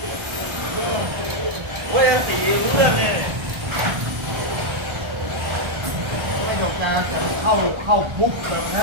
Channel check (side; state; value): left; late; 1.3 ms